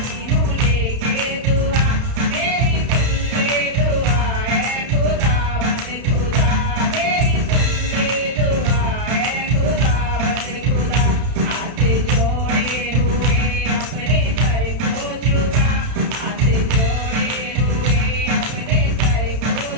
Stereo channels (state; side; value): late; left; 31 ms